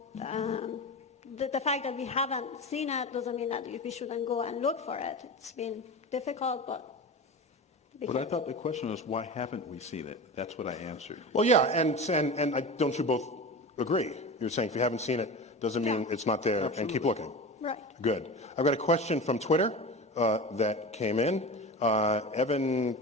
the fact that we haven't seen it doesn't mean that we shouldn't go and look for it. It's been difficult, but... But I thought the question was, why haven't we seen it? That's what I answered. Well, yeah, and don't you both agree? You're saying if you haven't seen it, doesn't mean it's not there, and keep looking. Right. Good. I've got a question from Twitter that came in. Evan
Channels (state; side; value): normal; both; correlation 0.29